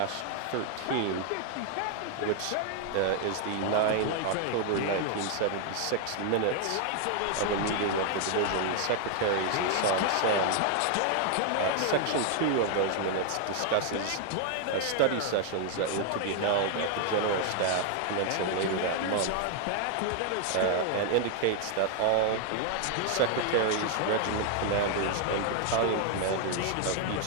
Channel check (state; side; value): different; both; correlation 0.00